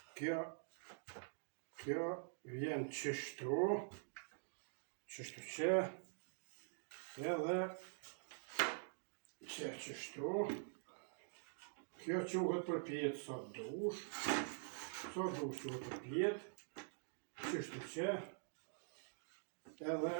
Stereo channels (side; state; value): left; silent; digital silence